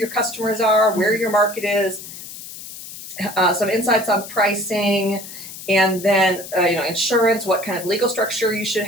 customers are, where your market is, some insights on pricing, and then insurance, what kind of legal structure you should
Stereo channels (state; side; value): noise; left; hiss, 13 dB below the sound